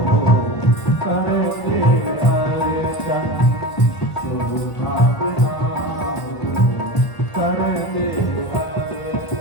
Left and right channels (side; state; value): right; late; 1.5 ms